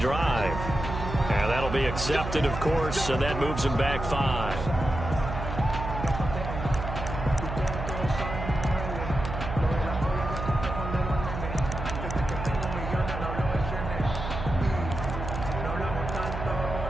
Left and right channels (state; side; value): noise; right; hum, 6 dB below the sound